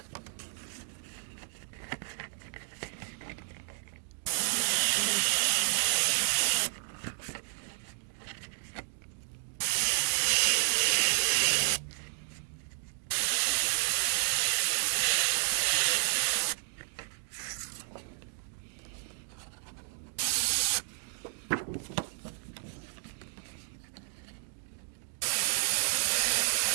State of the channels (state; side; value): silent; left; 57 dB below the other